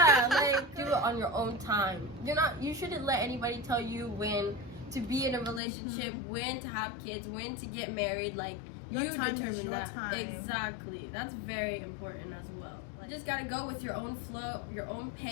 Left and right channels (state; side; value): drops out; right; at 5.6 s